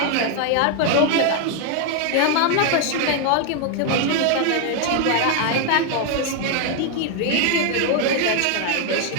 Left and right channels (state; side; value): different; both; correlation 0.00